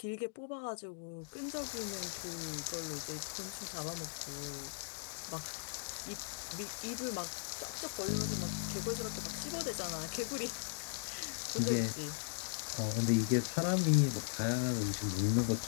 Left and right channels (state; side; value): silent; right; digital silence